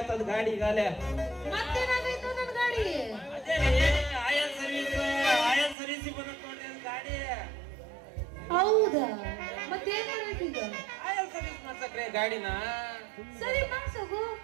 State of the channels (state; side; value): drops out; left; at 5.8 s